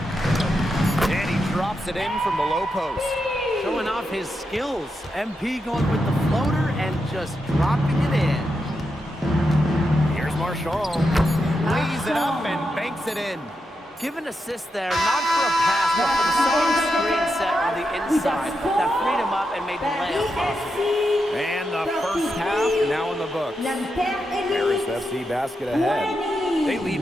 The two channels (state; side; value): normal; both; correlation 0.85